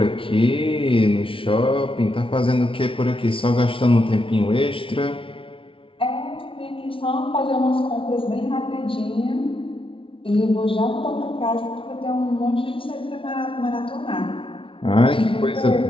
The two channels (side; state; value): right; late; 0.25 ms